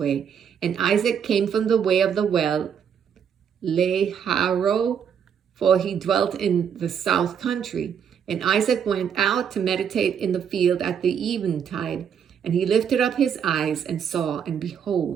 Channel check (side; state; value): left; quieter; 7.8 dB